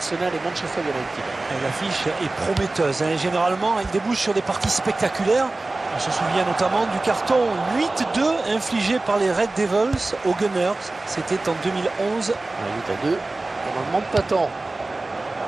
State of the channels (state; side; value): quieter; left; 3.1 dB